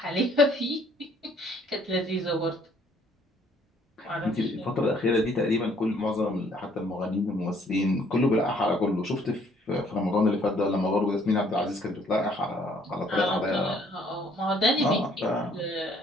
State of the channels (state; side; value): normal; both; correlation 0.62